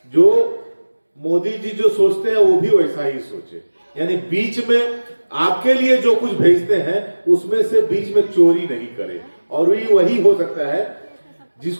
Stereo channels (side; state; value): both; inverted; correlation -1.00